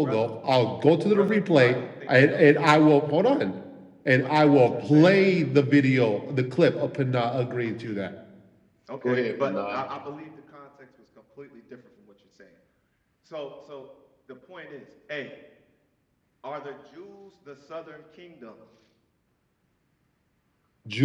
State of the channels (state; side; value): identical; both; correlation 1.00